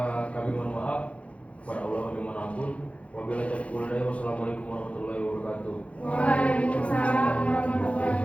kami mohon maaf. Kepada Allah kami mohon ampun. Wabillahi taufiq wal hidayah. Wassalamualaikum warahmatullahi wabarakatuh. Waalaikumsalam warahmatullahi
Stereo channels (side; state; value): right; late; 0.063 ms